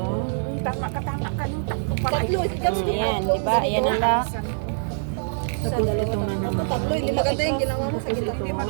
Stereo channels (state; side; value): silent; left; digital silence